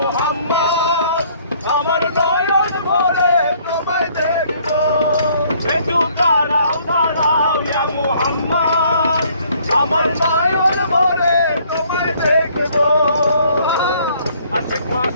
আমার নয়ন ভরে তোমায় দেখবো একটু দাঁড়াও দাঁড়াও ইয়া মুহাম্মদ আমার নয়ন ভরে তোমায় দেখবো আশেক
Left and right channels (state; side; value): inverted; both; correlation -0.62